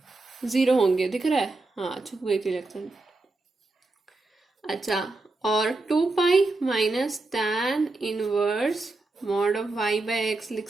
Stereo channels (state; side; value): quieter; left; 3.2 dB